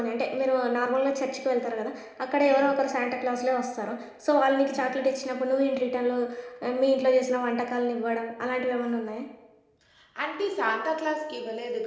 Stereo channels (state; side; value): identical; both; correlation 1.00